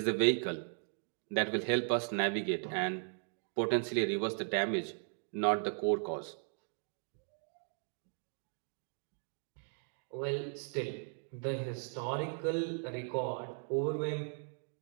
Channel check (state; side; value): silent; left; 53 dB below the other